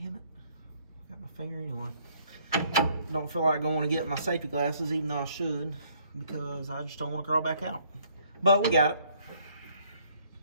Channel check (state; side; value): inverted; both; correlation -0.64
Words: it. I got my finger anyway. Don't feel like going to get my safety glasses, even though I should, because I just don't want to crawl back out. But we got it.